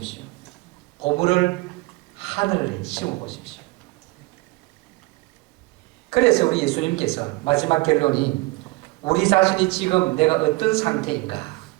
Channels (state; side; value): quieter; left; 23.2 dB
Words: 보물을 하늘에 심어보십시오. 그래서 우리 예수님께서 마지막 결론이 우리 자신이 지금 내가 어떤 상태인가